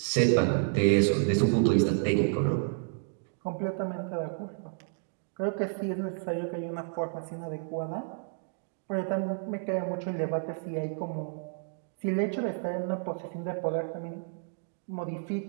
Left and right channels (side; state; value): left; silent; digital silence